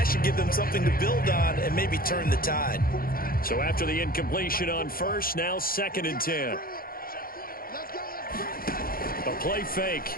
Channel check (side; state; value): right; late; 0.42 ms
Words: should give them something to build on and maybe turn the tide. So after the incompletion on 1st, now 2nd and 10. A play